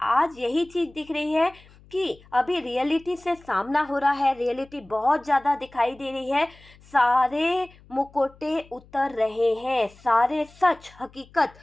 आज यही चीज़ दिख रही है कि अभी रियलिटी से सामना हो रहा है, रियलिटी बहुत ज़्यादा दिखाई दे रही है, सारे मुकोटे उतर रहे हैं, सारे सच हकीकत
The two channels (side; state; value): left; noise; hum, 26 dB below the sound